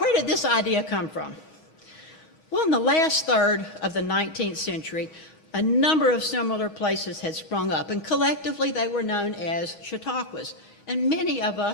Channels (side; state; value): right; late; 9.8 ms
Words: did this idea come from? Well, in the last third of the 19th century, a number of similar places had sprung up, and collectively they were known as chautauquas. And many of